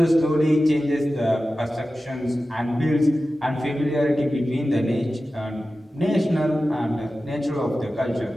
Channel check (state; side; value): normal; both; correlation 0.94